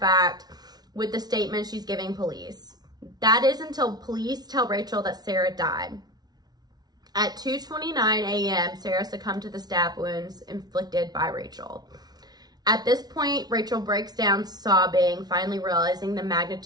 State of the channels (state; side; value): late; left; 0.19 ms